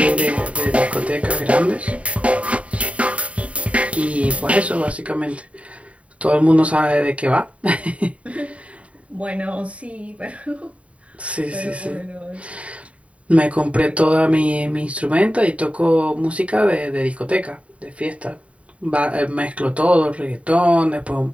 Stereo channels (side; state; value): left; late; 0.064 ms